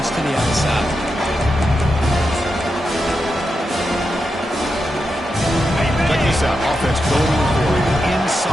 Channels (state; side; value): normal; both; correlation 0.87